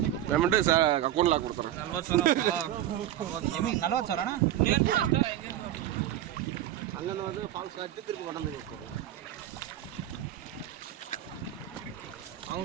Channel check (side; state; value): left; quieter; 12.3 dB